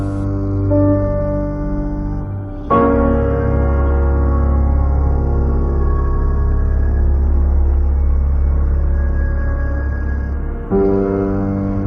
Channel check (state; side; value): identical; both; correlation 1.00